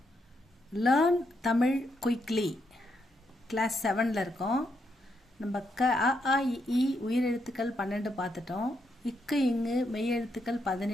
லேர்ன் தமிழ் குயிக்லி கிளாஸ் 7ல் இருக்கோம். நம்ம அ ஆ இ உயிரெழுத்துக்கள் 12 பார்த்துட்டோம். இக்கு இங்கு மெய்யெழுத்துக்கள்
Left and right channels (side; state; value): both; normal; correlation 0.79